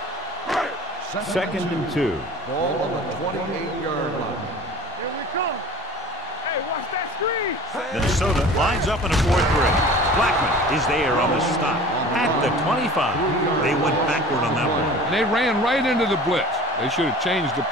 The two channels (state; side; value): normal; both; correlation 0.42